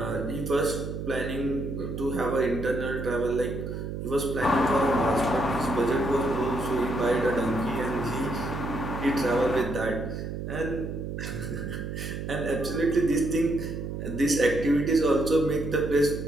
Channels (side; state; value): right; noise; hum, 6 dB below the sound